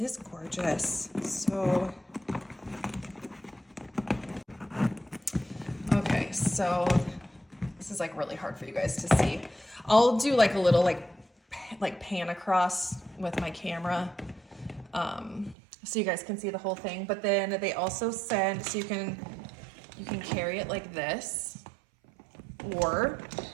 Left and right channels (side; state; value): left; drops out; at 15.6 s